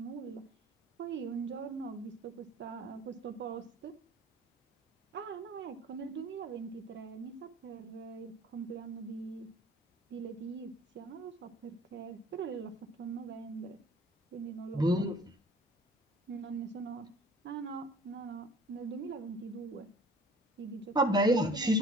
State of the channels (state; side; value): normal; both; correlation 0.50